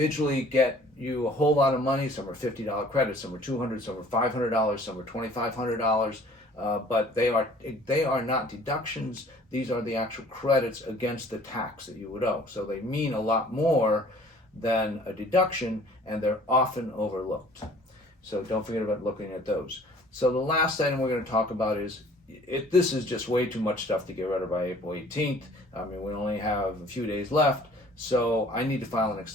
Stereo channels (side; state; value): both; normal; correlation 0.53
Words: get you a whole lot of money. Some are $50 credits, some are $200, some are $500, some are $2,500. But they are not deductions. These are the actual credits against the tax that you would owe. So they mean a lot more than a deduction, and they're often overlooked. So don't forget about looking at those. So the last item we're going to talk about is, this is just way too much stuff to get rid of by April 18th. I mean, we only have a few days left, so I need to file an